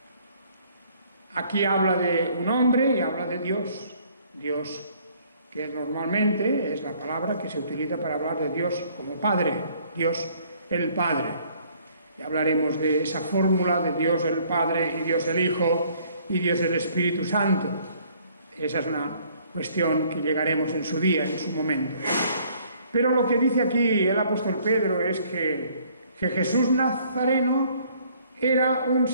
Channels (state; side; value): inverted; both; correlation -0.60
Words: Aquí habla de un hombre y habla de Dios. Dios, que normalmente es la palabra que se utiliza para hablar de Dios como Padre, Dios el Padre. Y hablaremos de esa fórmula de Dios el Padre y Dios el Hijo y Dios el Espíritu Santo. Esa es una cuestión que llegaremos en su día, en su momento. Pero lo que dice aquí el apóstol Pedro es que Jesús Nazareno era un